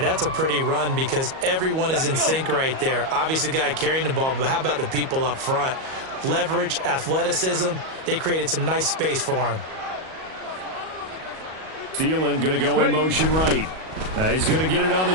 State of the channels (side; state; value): left; late; 38 ms